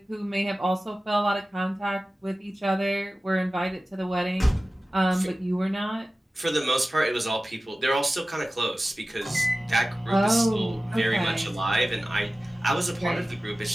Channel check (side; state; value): both; normal; correlation 0.96